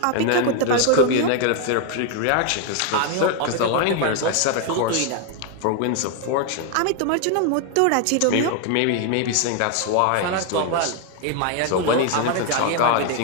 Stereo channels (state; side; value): different; both; correlation 0.01